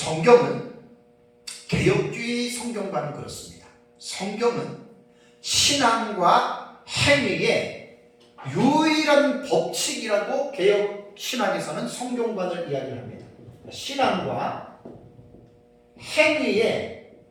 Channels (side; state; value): both; identical; correlation 1.00